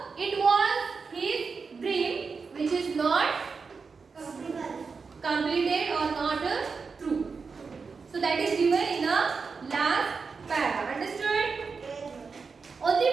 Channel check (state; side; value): quieter; left; 5.0 dB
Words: it was his dream which is not completed or not true. So that is given in the last paragraph. Understood?